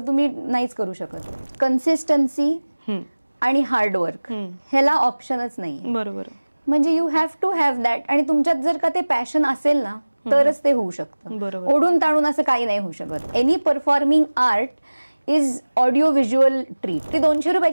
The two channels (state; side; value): inverted; both; correlation -1.00